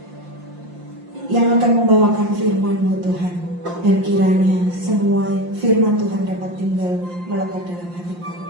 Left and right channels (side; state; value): left; late; 5.7 ms